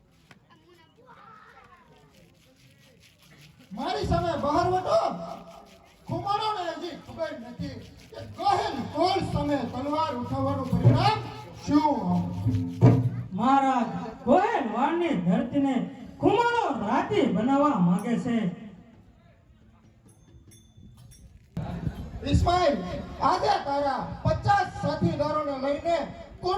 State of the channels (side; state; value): both; identical; correlation 1.00